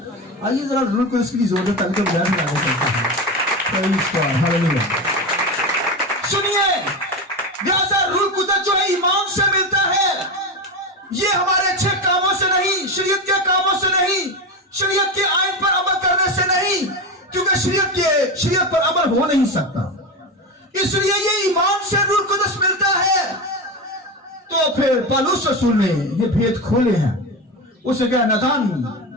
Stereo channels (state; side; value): normal; both; correlation 0.20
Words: आइए जरा रूह कुदस की जरूरत है, ताकि बयान में आगे चलते हैं। हालेलुया। सुनिए, लिहाजा रूह कुदस जो है ईमान से मिलता है, ये हमारे अच्छे कामों से नहीं, शरीयत के कामों से नहीं, शरीयत के आइन पर अमल करने से नहीं, क्योंकि शरीयत पर अमल हो नहीं सकता। इसलिए ये ईमान से रूह कुदस मिलता है। तो फिर पौलुस रसूल ने ये भेद खोले हैं। उसे कहा, नादान